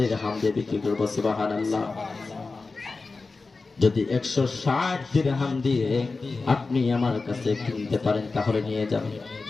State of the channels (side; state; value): right; quieter; 3.9 dB